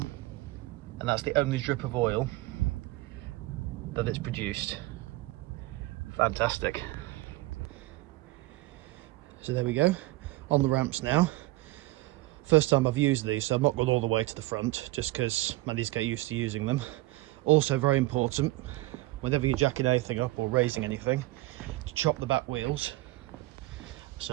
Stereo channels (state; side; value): quieter; left; 19.2 dB